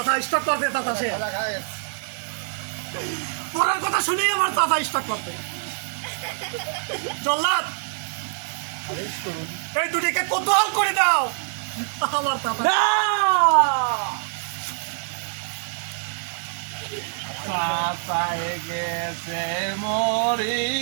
পড়ার কথা শুনেই আমার কথা স্টার্ট করতে জল্লাদ এই দুটিকে কোতোয়াল করে দাও আমার গেছে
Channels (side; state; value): left; silent; 62 dB below the other